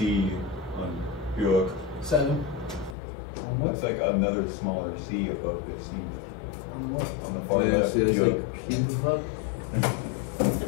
on Bjork? 7. Looks like another smaller sea above the sea. On the far yeah, left. see, it's Bjork. like cube pup. The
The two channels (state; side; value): drops out; right; at 3.0 s